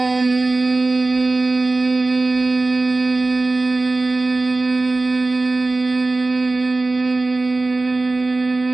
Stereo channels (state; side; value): quieter; left; 3.3 dB